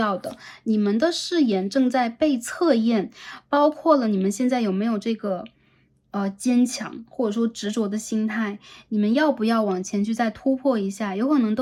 的。你们的誓言正在被测验，包括了你们现在有没有这个坚强或者说执着的心态，你们要不要往前去再突破一下？有可能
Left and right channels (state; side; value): identical; both; correlation 1.00